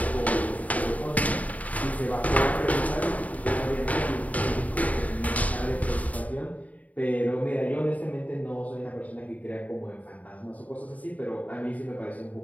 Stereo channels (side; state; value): right; late; 0.071 ms